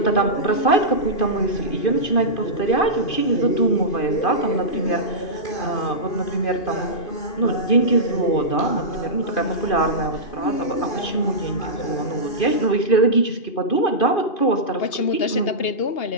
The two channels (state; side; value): late; right; 2.5 ms